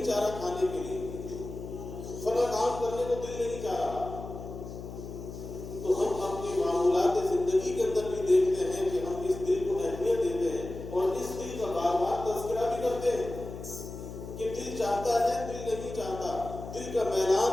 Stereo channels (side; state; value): left; noise; hum, 10 dB below the sound